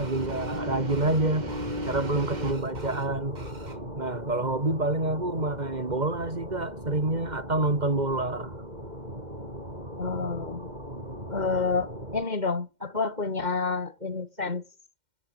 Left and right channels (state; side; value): late; left; 2.1 ms